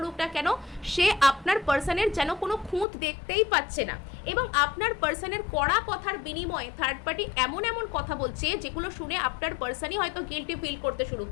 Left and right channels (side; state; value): right; drops out; at 2.9 s